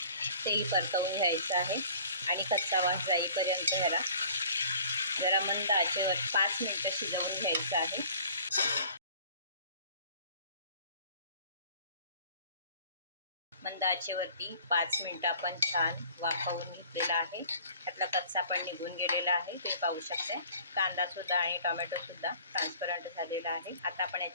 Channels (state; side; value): inverted; both; correlation -0.50